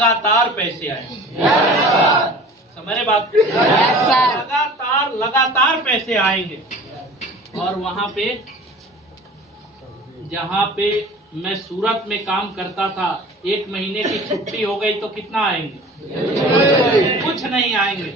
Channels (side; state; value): both; normal; correlation 0.43